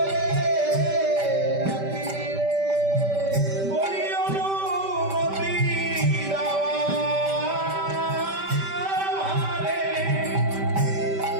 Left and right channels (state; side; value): late; left; 5.1 ms